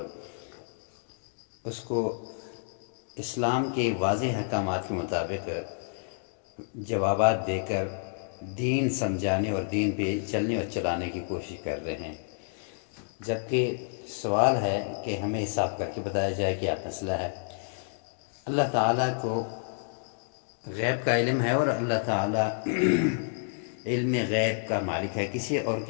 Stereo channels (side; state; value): right; silent; digital silence